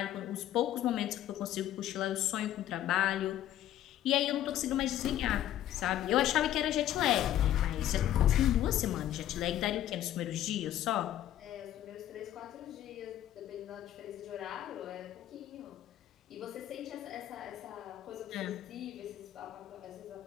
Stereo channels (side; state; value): right; quieter; 12.3 dB